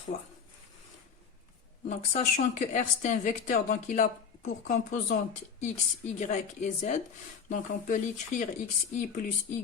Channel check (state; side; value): quieter; right; 6.4 dB